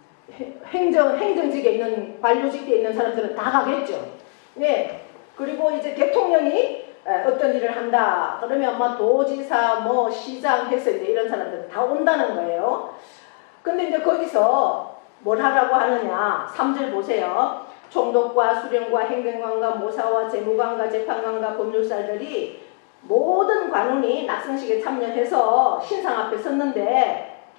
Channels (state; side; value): quieter; right; 34.4 dB